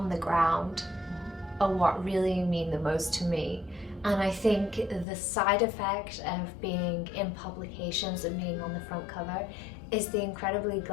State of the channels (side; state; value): right; drops out; at 5.1 s